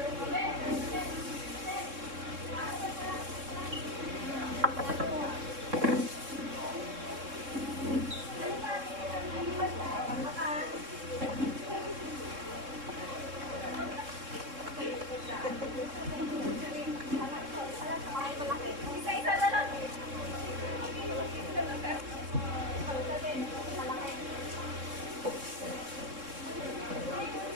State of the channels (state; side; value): late; left; 3.7 ms